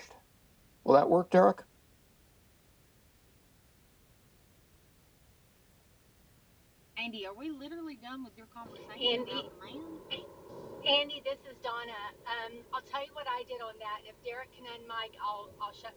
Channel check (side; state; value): both; identical; correlation 1.00